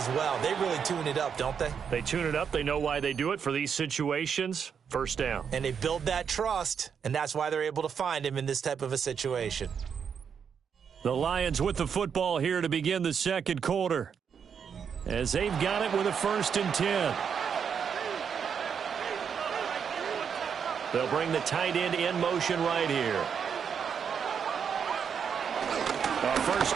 well. They really tune it up, don't they? They tune it up. They know why they do it for these situations. First down. And they build that trust, and that's why they're able to find him in this type of a situation. The Lions with the football here to begin the 2nd quarter, as they've got it with a 1st and 10. They'll bring the tight end in motion right here. A first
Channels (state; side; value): quieter; left; 7.1 dB